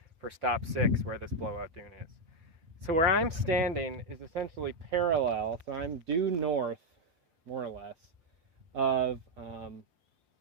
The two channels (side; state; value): left; late; 6.1 ms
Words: for stop 6 where this blowout dune is. So where I'm standing is essentially parallel, so I'm due north, more or less, of